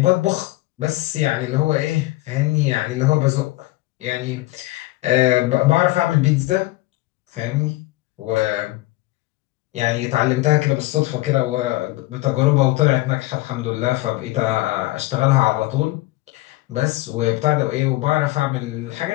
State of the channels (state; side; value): quieter; right; 18.9 dB